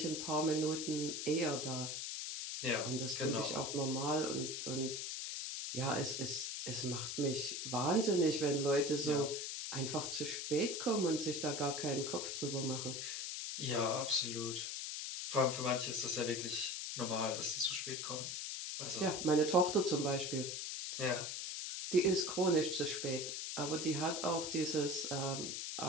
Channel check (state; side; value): noise; left; hiss, 4 dB below the sound